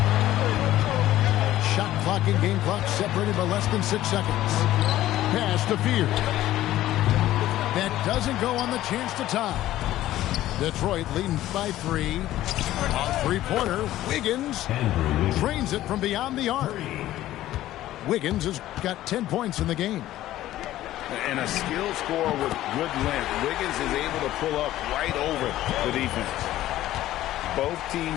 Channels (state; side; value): quieter; right; 14.3 dB